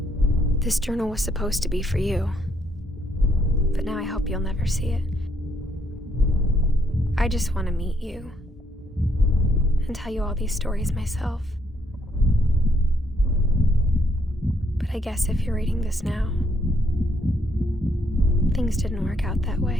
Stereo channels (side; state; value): both; normal; correlation 0.72